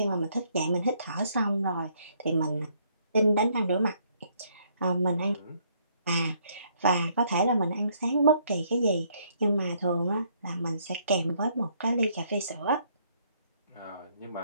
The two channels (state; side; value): inverted; both; correlation -0.68